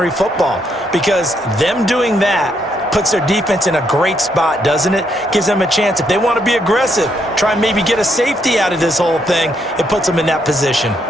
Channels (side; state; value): both; normal; correlation 0.75